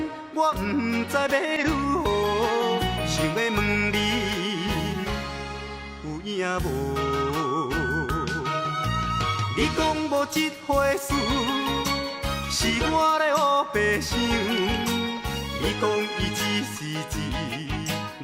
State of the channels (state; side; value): identical; both; correlation 1.00